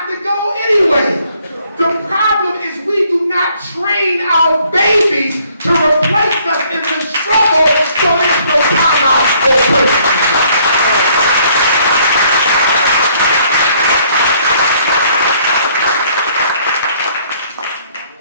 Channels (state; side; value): inverted; both; correlation -0.64